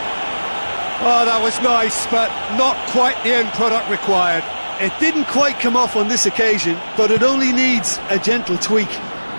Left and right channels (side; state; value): both; inverted; correlation -1.00